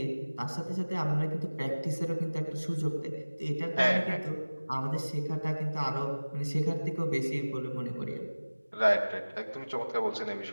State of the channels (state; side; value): inverted; both; correlation -1.00